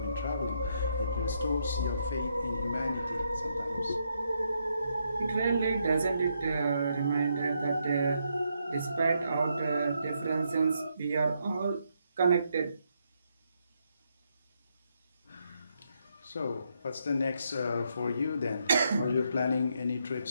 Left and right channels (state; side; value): inverted; both; correlation -0.78